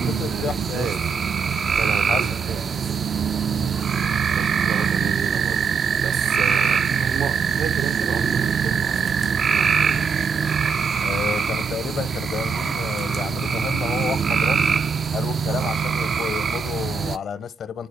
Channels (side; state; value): left; quieter; 5.2 dB